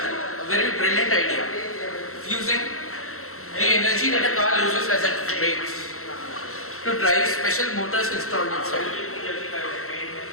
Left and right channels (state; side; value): late; right; 0.63 ms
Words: a very brilliant idea, using the energy that a car uses as it brakes to drive special motors installed inside.